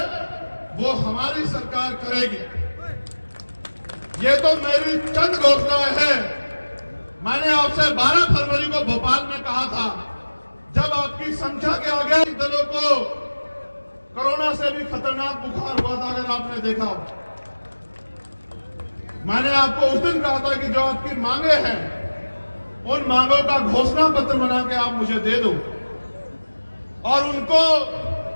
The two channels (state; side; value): inverted; both; correlation -1.00